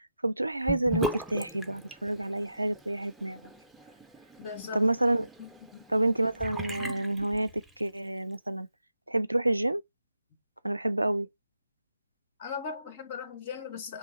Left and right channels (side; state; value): both; inverted; correlation -0.85